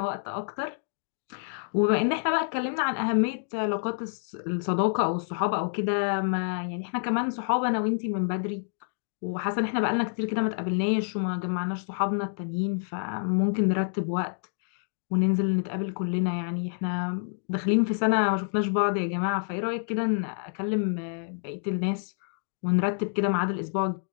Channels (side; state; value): right; silent; digital silence